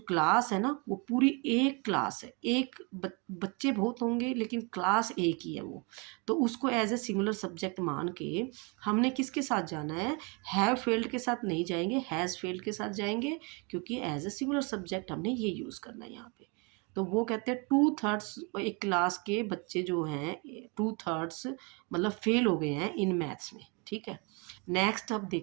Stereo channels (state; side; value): quieter; left; 31.7 dB